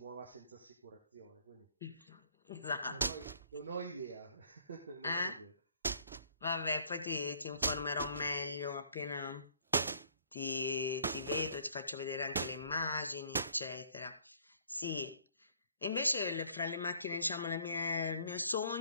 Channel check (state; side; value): inverted; both; correlation -0.59